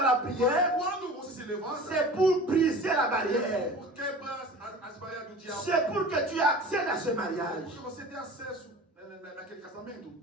prière, Quando você se levanta, c'est pour briser la barrière. por quebrar as barreiras do diabo. C'est pour que tu accèdes à ce mariage. Porque você tem acesso naquele casamento.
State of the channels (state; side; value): normal; both; correlation 0.39